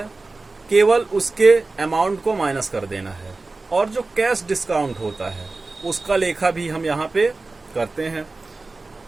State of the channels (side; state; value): left; quieter; 3.5 dB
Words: केवल उसके अमाउंट को माइनस कर देना है, और जो कैश डिस्काउंट होता है उसका लेखा भी हम यहाँ पे करते हैं।